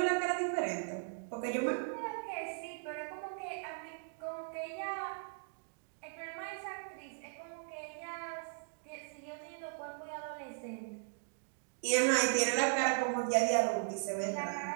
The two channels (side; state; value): left; silent; digital silence